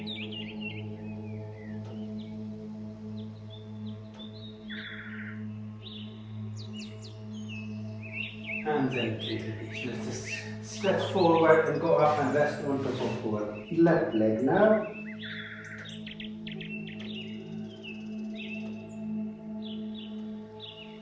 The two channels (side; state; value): both; identical; correlation 1.00